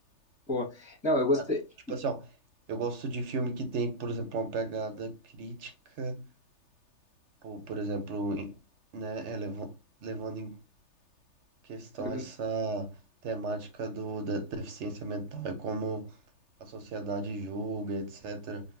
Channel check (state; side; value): late; left; 3.3 ms